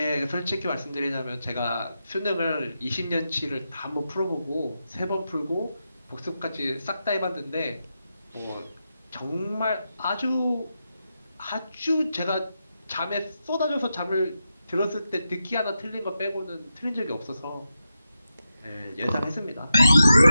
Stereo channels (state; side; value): inverted; both; correlation -0.89